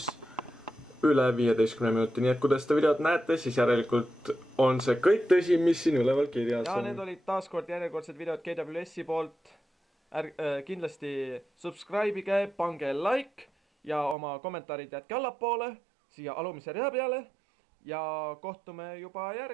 üle 15 minuti, nii et kui te seda videot näete, siis järelikult on see kõik tõsi, mis siin üleval kirjas on. Ja need olid taaskord järjekordsed videod KWS-i poolt. Kindlasti subscribe'ige, pange like ja oma kommentaarid jätke allapoole siia alumise rea peale ja kohtume juba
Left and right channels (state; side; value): drops out; left; at 14.2 s